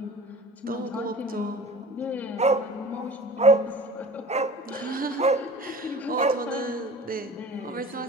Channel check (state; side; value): normal; both; correlation 0.41